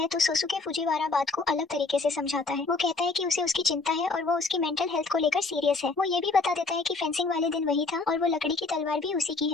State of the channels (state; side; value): quieter; right; 3.8 dB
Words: तो सोसुके फुजीवारा बात को अलग तरीके से समझाता है। वो कहता है कि उसे उसकी चिंता है और वो उसकी मेंटल हेल्थ को लेकर सीरियस है। वो ये भी बता देता है कि फेंसिंग वाले दिन वही था और वो लकड़ी की तलवार भी उसी की